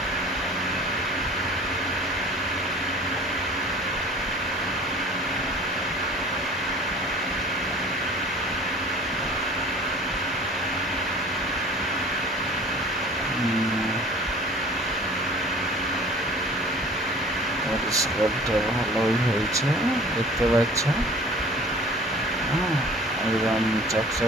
পরিষ্কারটা ভালোই হয়েছে দেখতে পাচ্ছ। একদম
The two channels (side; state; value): both; normal; correlation 0.46